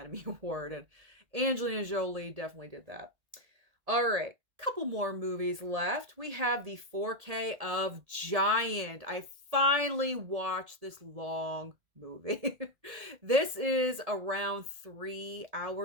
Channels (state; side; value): late; left; 1.7 ms